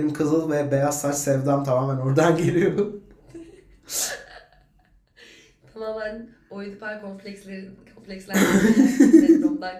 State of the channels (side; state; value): both; identical; correlation 1.00